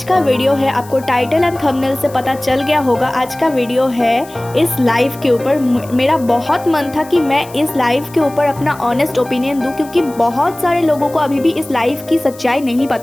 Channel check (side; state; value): left; noise; hiss, 21 dB below the sound